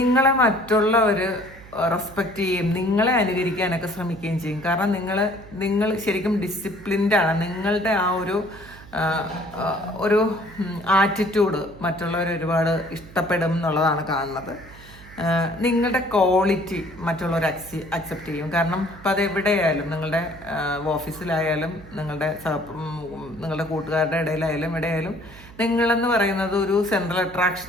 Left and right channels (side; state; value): right; noise; hum, 19 dB below the sound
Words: മറ്റുള്ളവർ റെസ്പെക്റ്റ് ചെയ്യും, നിങ്ങളെ അനുകരിക്കാനൊക്കെ ശ്രമിക്കുകയും ചെയ്യും. കാരണം നിങ്ങൾ ശരിക്കും ഡിസിപ്ലിൻഡാണ്. നിങ്ങളുടെ ആ ഒരു ആറ്റിറ്റ്യൂഡ് മറ്റുള്ളവർ ഒരുപാട് ഇഷ്ടപ്പെടും എന്നുള്ളതാണ് കാണുന്നത്. നിങ്ങളുടെ ക്വാളിറ്റി മറ്റുള്ളവർ അക്സെപ്റ്റ് ചെയ്യും. കാരണം ഇപ്പം അത് എവിടെയായാലും, നിങ്ങളുടെ ഓഫീസിലായാലും നിങ്ങളുടെ കൂട്ടുകാരുടെ ഇടയിലായാലും എവിടെയായാലും നിങ്ങളെന്ന് പറയുന്നത് ഒരു സെൻട്രൽ